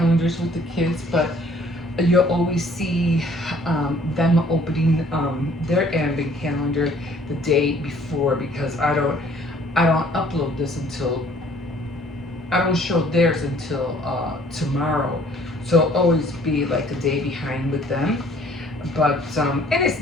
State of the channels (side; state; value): both; normal; correlation 0.58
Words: with the kids, but you'll always see them opening their advent calendar the day before, because I don't upload this until I don't show theirs until tomorrow. So I'll always be like a day behind with them. But and it's